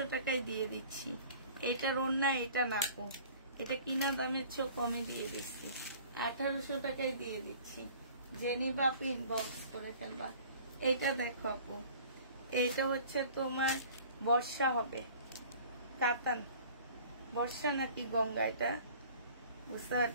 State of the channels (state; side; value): inverted; both; correlation -0.48